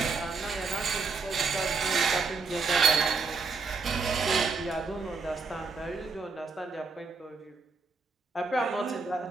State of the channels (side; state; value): left; quieter; 4.5 dB